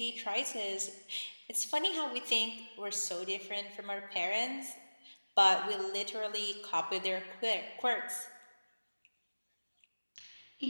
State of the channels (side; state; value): both; inverted; correlation -1.00